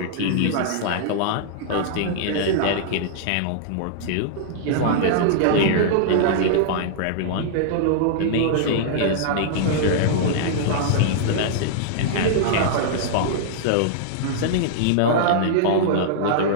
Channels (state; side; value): different; both; correlation -0.02